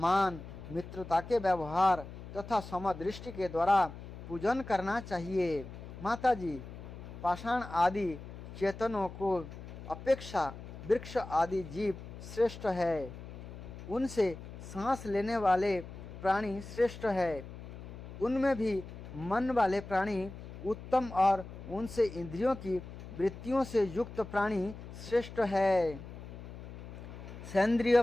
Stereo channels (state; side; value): noise; left; hum, 13 dB below the sound